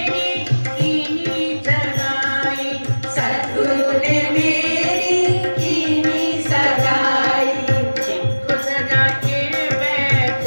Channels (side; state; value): both; inverted; correlation -1.00